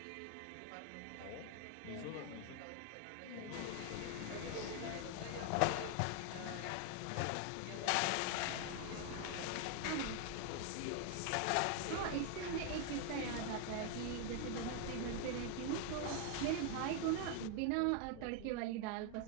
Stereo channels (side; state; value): both; different; correlation 0.00